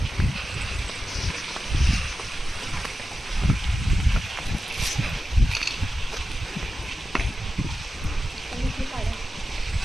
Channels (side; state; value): both; normal; correlation 0.92